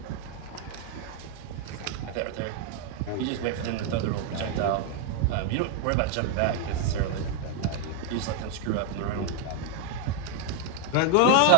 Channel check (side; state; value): both; different; correlation 0.01